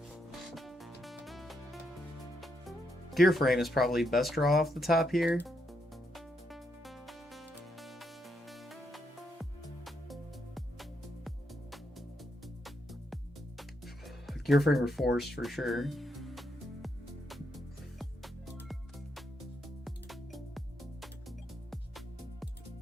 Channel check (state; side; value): normal; both; correlation 0.79